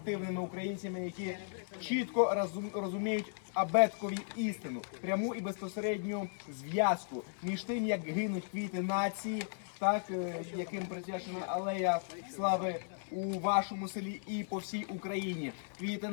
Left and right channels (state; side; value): silent; right; 54 dB below the other